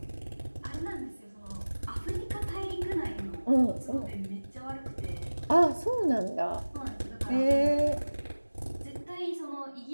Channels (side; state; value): both; inverted; correlation -1.00